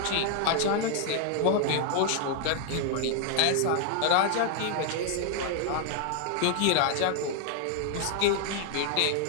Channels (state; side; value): different; both; correlation 0.00